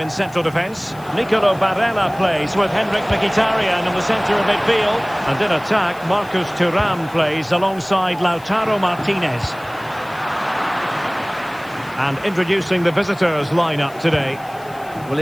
in central defence. Nicolo Barella plays with Henrik Mkhitaryan in the centre of midfield. And in attack, Marcus Thuram plays alongside Lautaro Martinez. And introducing the visitors lineup today. Well,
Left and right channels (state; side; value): noise; left; hiss, 24 dB below the sound